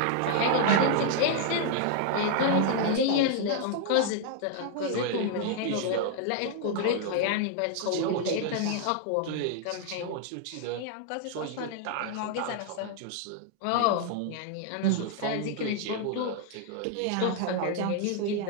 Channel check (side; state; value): both; different; correlation 0.00